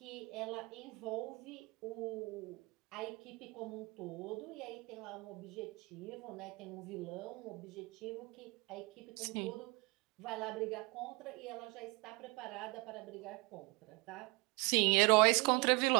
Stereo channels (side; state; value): left; quieter; 27.3 dB